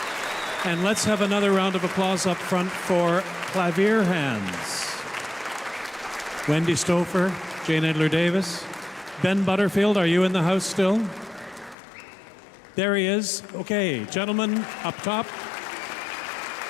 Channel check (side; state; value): right; drops out; at 11.8 s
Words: And let's have another round of applause up front for KlaVIERhands. Wendy Stouffer, Jane Edler-Davis. Ben Butterfield, are you in the house still? There he is. Okay, gentlemen up top.